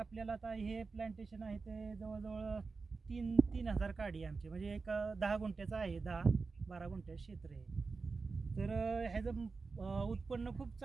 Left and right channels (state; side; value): quieter; left; 4.4 dB